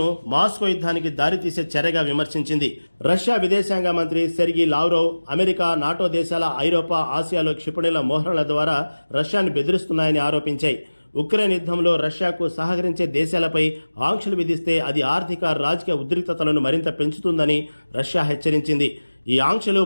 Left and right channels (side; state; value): both; inverted; correlation -1.00